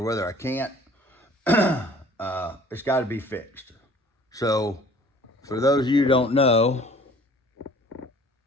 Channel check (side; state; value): both; normal; correlation 0.51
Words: I can't, it's got to be fixed. So, for those of you who don't know,